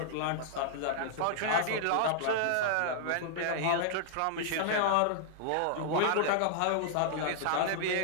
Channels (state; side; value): different; both; correlation -0.01